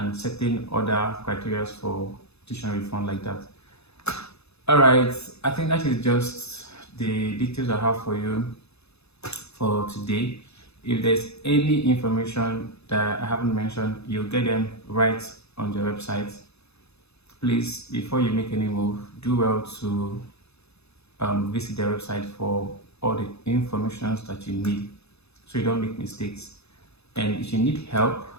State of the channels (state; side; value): late; right; 0.79 ms